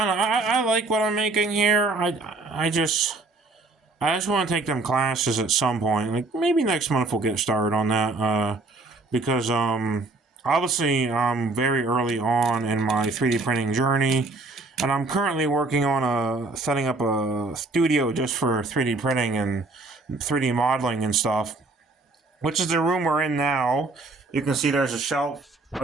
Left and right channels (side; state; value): left; quieter; 3.3 dB